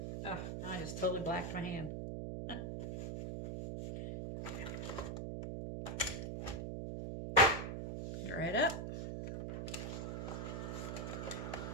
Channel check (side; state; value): right; noise; hum, 4 dB below the sound